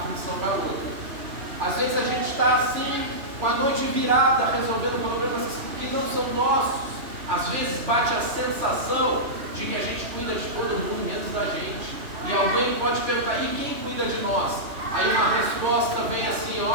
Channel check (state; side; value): late; left; 3.0 ms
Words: função para outra. Às vezes a gente está assim, com a noite virada, resolvendo problemas que não são nossos. Às vezes bate a sensação de que a gente cuida de todo mundo, menos da gente. E alguém pode perguntar: e quem cuida de nós? Aí uma resposta vem assim: